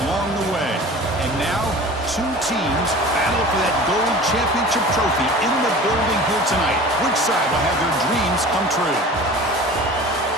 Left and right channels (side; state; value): both; normal; correlation 0.40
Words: along the way. And now, two teams battle for that gold championship trophy in the building here tonight. Which side will have their dreams come true?